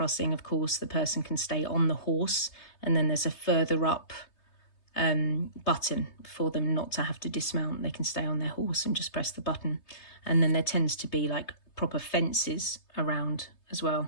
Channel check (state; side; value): late; right; 3.3 ms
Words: of course, the person can stay on the horse, and then there's a further up button for them not to have to dismount. They can stay on their horse and just press the button. And then there tends to be like proper fences around as